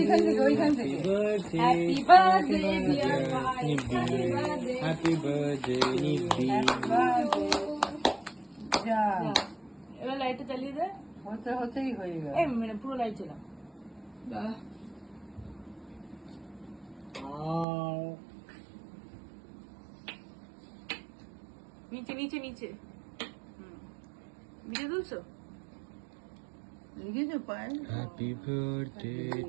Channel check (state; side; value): drops out; left; at 17.7 s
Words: ওইখান থেকে Happy birthday dear Nibbi. Happy birthday Nibbi. যা এবার লাইটটা চালিয়ে দে। হতেই হয়ে গেল। এই মানে পুরো লাইট চালা। নিচে নিচে নিচে ভিডিও তুলছো? লিখেছো পায়? Happy birthday